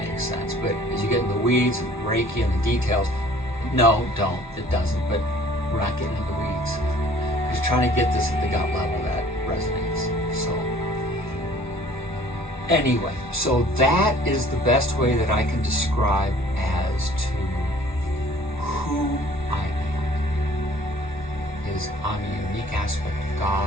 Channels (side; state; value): both; normal; correlation 0.53